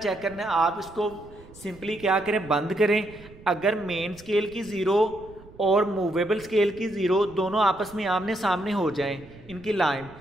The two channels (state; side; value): noise; right; rumble, 21 dB below the sound